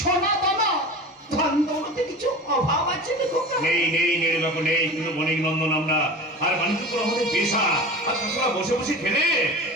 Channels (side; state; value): both; normal; correlation 0.34